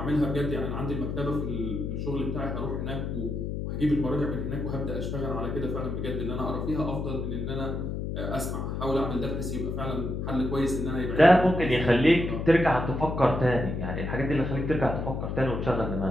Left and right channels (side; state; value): left; noise; hum, 3 dB below the sound